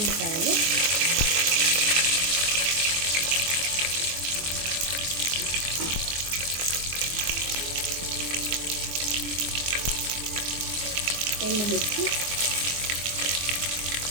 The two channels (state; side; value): late; left; 24 ms